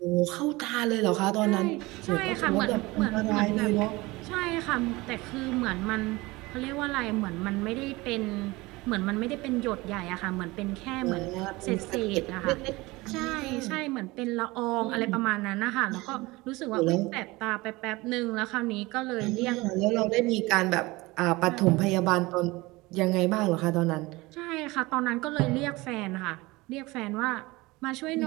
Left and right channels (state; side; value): quieter; left; 21.8 dB